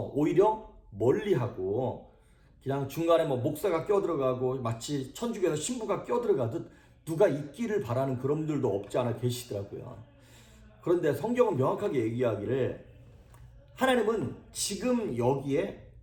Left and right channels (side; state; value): both; identical; correlation 1.00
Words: 오히려 멀리하고 그냥 중간에 목사가 껴들어가고 마치 천주교에서 신부가 껴들어가듯 누가 있기를 바라는 그런 분들도 없지 않아 계시더라고요. 그런데 성경은 명확하게 얘기하기를 하나님은 지금 여기에